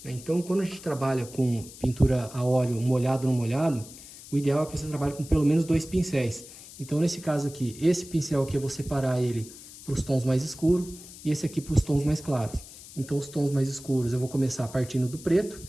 né? Então, quando a gente trabalha com pintura a óleo molhado no molhado, o ideal é que você trabalhe com pelo menos 2 pincéis. Então, nesse caso aqui, esse pincel aqui eu vou separar ele para os tons mais escuros e esse aqui para os tons mais claros. Então, os tons mais escuros eu vou começar partindo do preto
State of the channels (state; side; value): noise; left; hiss, 17 dB below the sound